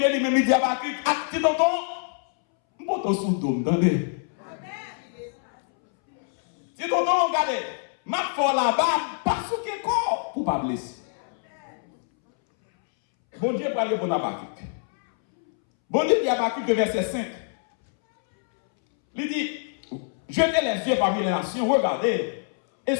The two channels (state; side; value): silent; right; 62 dB below the other